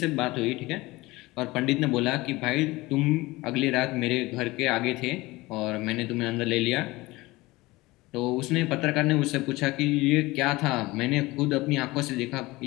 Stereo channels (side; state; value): right; quieter; 20.6 dB